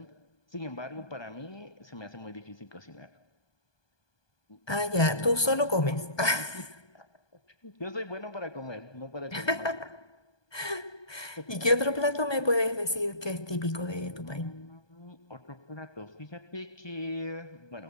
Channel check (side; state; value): right; late; 1.2 ms